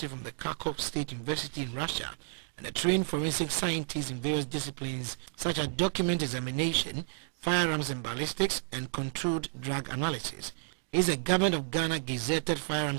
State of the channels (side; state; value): left; silent; digital silence